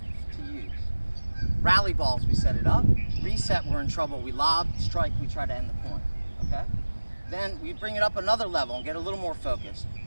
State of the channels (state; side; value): inverted; both; correlation -1.00